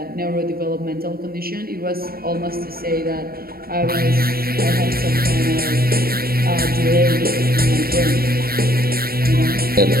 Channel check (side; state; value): left; late; 0.44 ms